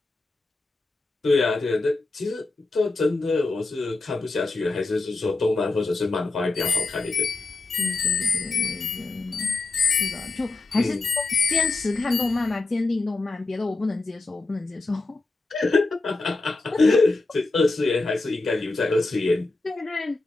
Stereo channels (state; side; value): quieter; right; 3.3 dB